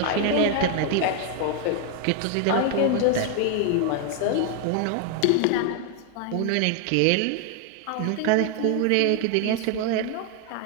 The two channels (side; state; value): both; different; correlation 0.00